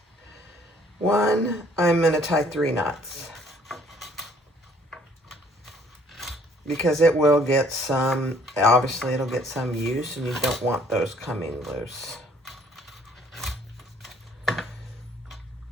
one, I'm going to tie 3 knots. Because it will get some, obviously it'll get some use, and you don't want those coming loose.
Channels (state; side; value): normal; both; correlation 0.60